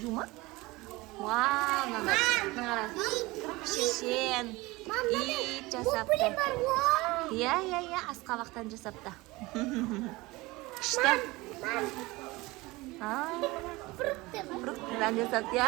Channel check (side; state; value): left; quieter; 21.6 dB